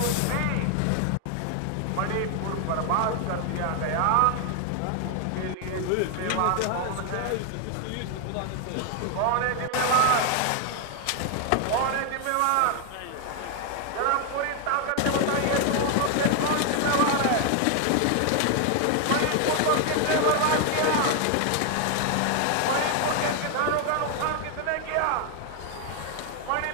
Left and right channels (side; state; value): both; different; correlation 0.00